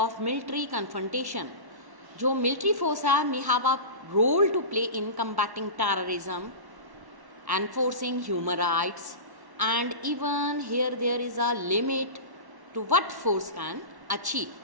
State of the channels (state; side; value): late; left; 1.1 ms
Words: military confrontation. जो military force है may have a role to play in combating terrorism, enforcing human rights, and even here there is a limit to what force can achieve.